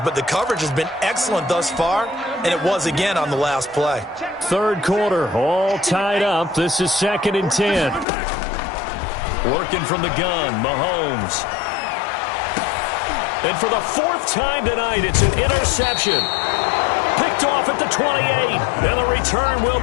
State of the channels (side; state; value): right; drops out; at 8.1 s